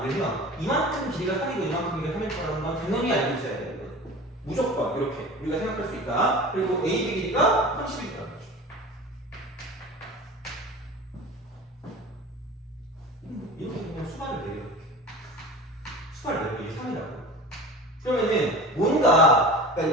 이만큼 길이가 3이고 이만큼 길이가 3일 거라는 건 당연히 알고 있어야 돼요. 무조건 이렇게 우리가 생각할 수 있다. 그리고 AB 길이가 30이다. 이렇게 그냥 수반을 내려 이렇게 수반을 내려 이게 3이라고. 그러면은 뭔가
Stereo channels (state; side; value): normal; both; correlation 0.35